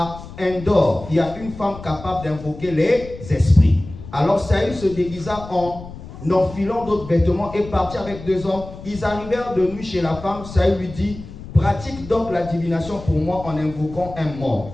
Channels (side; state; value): left; noise; rumble, 14 dB below the sound